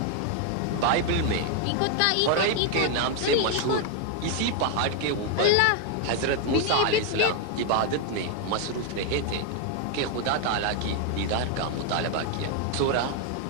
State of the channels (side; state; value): both; different; correlation 0.00